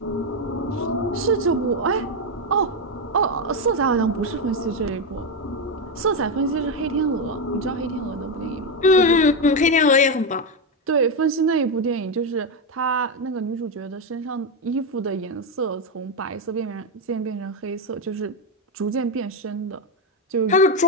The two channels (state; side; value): normal; both; correlation 0.08